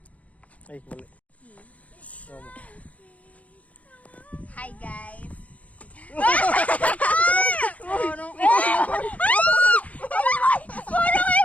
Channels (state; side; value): late; right; 0.068 ms